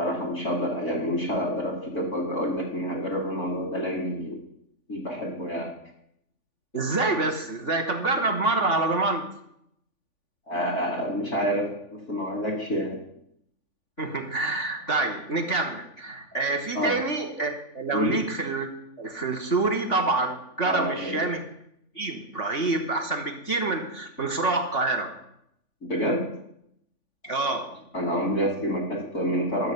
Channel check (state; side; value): late; right; 3.5 ms